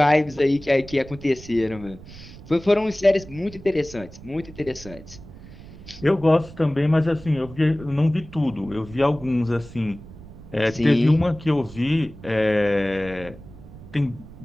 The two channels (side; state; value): right; noise; rumble, 17 dB below the sound